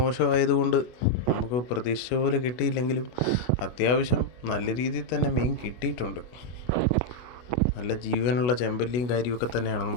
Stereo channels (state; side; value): late; right; 24 ms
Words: നമുക്ക് പ്രതീക്ഷിച്ച പോലെ കിട്ടിയില്ലെങ്കിലും അത്യാവശ്യം നല്ല രീതിയിൽ തന്നെ മീൻ കിട്ടിയിട്ടുണ്ട്. നല്ല ജീവനുള്ള ചെമ്പല്ലിയും കാര്യമൊക്കെ തന്നെയാണ്